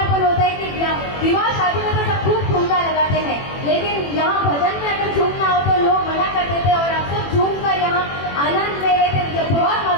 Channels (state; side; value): late; right; 21 ms